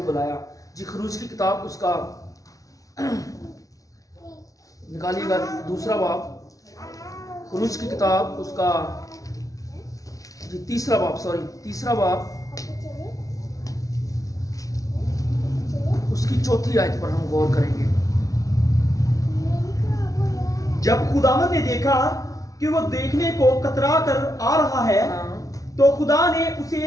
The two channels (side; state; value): right; late; 0.17 ms